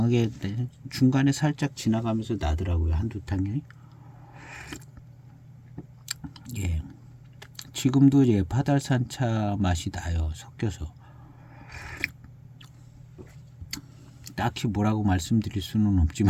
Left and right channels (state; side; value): identical; both; correlation 1.00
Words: 중간에 살짝 지나가면서 나더라고요. 한두 탕이. 지금도 이제 파달산차 맛이 나요. 섞여서. 딱히 뭐라고 말씀드릴 수는